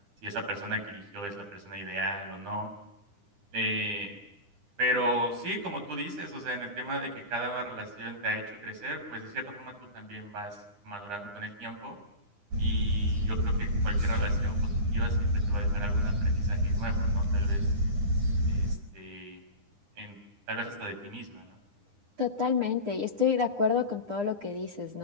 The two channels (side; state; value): left; late; 9.8 ms